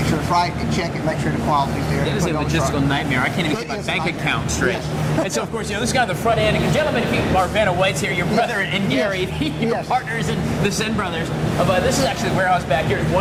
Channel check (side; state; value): both; identical; correlation 1.00